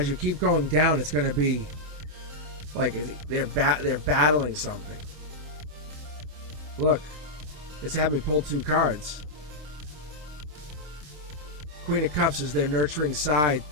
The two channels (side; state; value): left; late; 27 ms